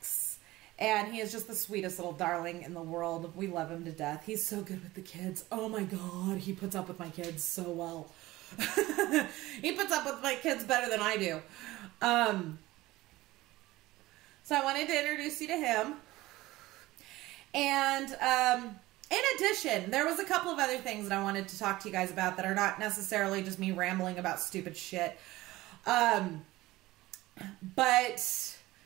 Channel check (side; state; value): left; quieter; 18.2 dB